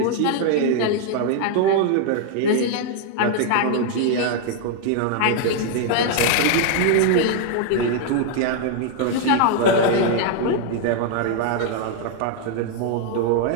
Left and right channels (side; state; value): both; different; correlation 0.00